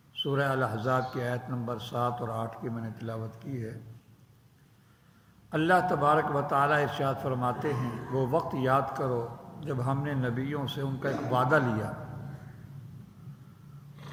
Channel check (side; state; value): both; identical; correlation 1.00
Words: سورہ الاحزاب کی آیت نمبر 7 اور 8 کی میں نے تلاوت کی ہے۔ اللہ تبارک و تعالیٰ ارشاد فرماتے ہیں، وہ وقت یاد کرو جب ہم نے نبیوں سے ان کا ایک وعدہ لیا،